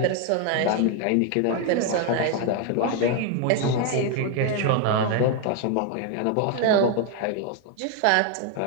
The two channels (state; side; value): different; both; correlation 0.01